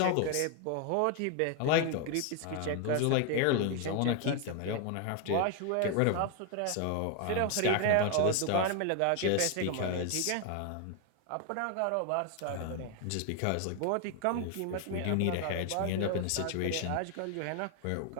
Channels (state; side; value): different; both; correlation 0.01